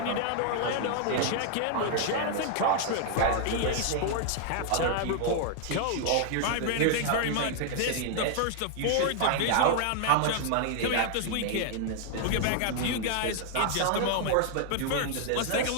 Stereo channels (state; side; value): different; both; correlation 0.00